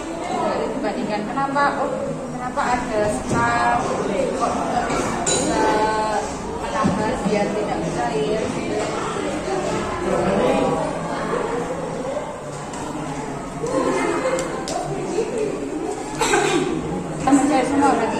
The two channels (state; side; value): identical; both; correlation 1.00